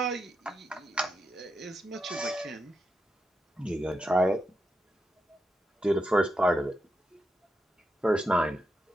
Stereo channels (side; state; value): both; normal; correlation 0.85